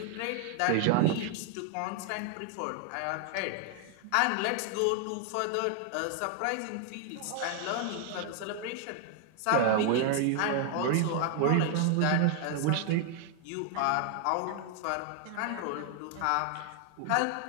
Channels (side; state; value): both; different; correlation 0.00